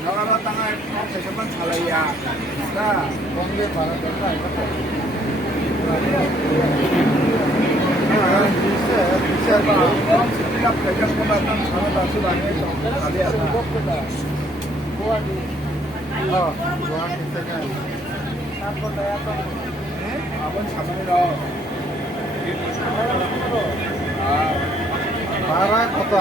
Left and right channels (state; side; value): normal; both; correlation 0.65